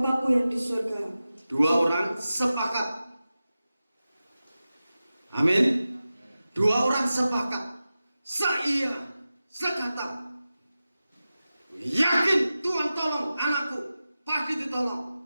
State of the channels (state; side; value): inverted; both; correlation -0.94